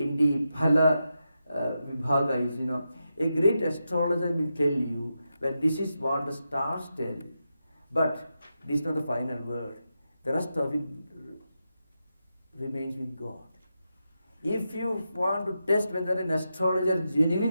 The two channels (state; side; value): inverted; both; correlation -0.88